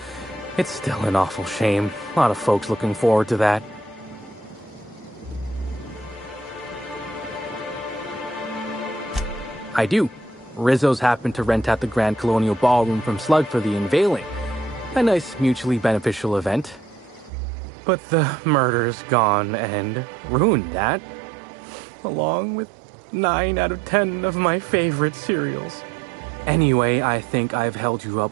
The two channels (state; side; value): drops out; left; at 17.3 s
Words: It's still an awful shame. A lot of folks looking forward to that. I do. Rizzo's happened to rent out the Grand Colonial Ballroom from Slug for the unveiling. A nice mutually beneficial event. But the murder's gone and ruined that. Along with 9 out of 10 of my favorite cereals. Anyway, I think I've held you